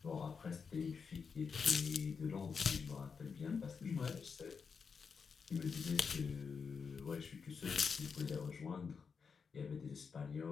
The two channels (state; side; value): quieter; right; 5.7 dB